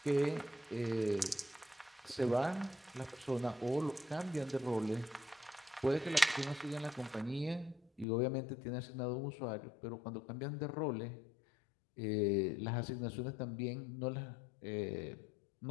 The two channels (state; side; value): drops out; right; at 8.1 s